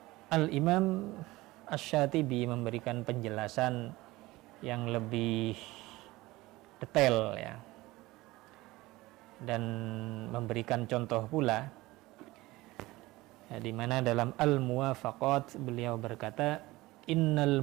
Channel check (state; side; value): quieter; left; 19.7 dB